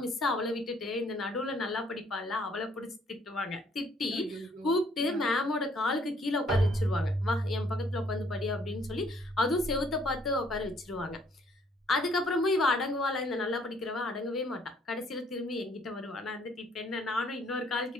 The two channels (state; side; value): normal; both; correlation 0.64